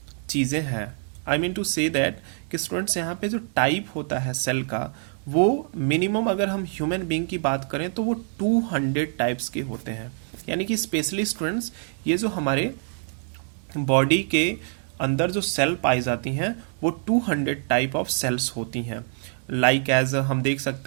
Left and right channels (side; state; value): left; silent; 56 dB below the other